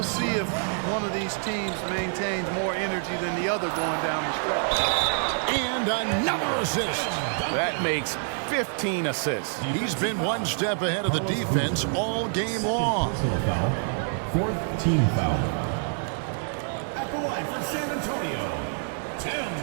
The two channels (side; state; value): left; silent; 60 dB below the other